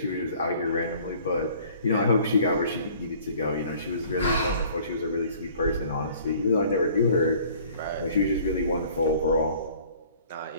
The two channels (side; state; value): both; inverted; correlation -0.53